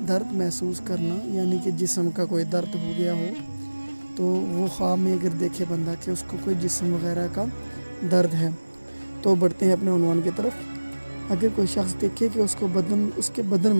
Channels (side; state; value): both; inverted; correlation -1.00